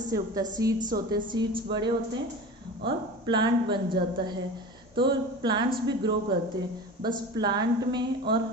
उगता है? सीड्स होते हैं, सीड्स बड़े होते हैं और प्लांट बन जाता है। तो प्लांट्स भी ग्रो करते हैं। बस प्लांट में और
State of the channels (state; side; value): normal; both; correlation 0.34